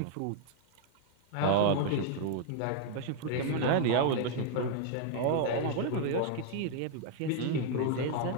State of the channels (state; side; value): different; both; correlation 0.00